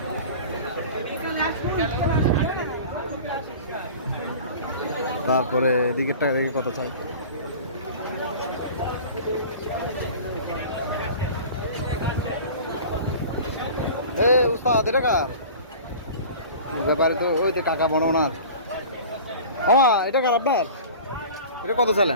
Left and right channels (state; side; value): inverted; both; correlation -0.39